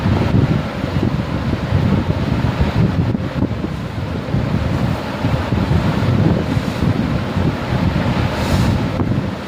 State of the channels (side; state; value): both; identical; correlation 1.00